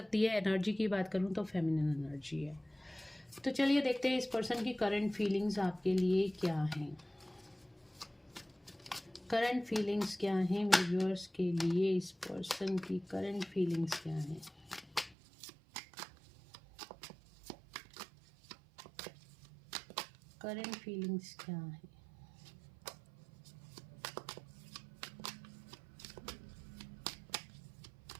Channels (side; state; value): left; drops out; at 15.2 s